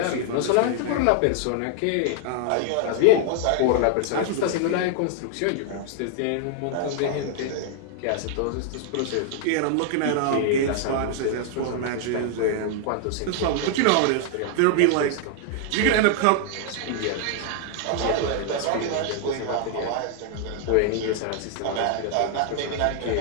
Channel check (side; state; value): both; different; correlation 0.00